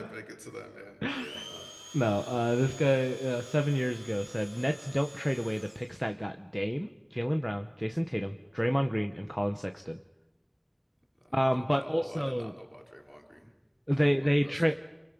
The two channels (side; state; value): both; identical; correlation 1.00